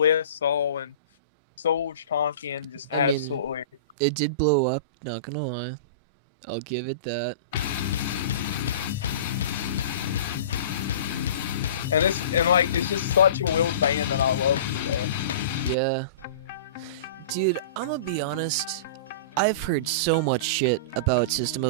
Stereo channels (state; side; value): inverted; both; correlation -0.36